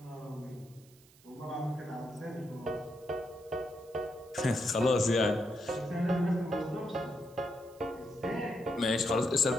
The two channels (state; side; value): noise; right; hiss, 26 dB below the sound